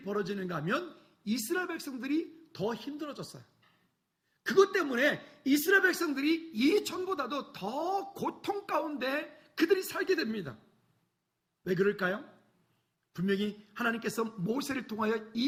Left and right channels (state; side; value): identical; both; correlation 1.00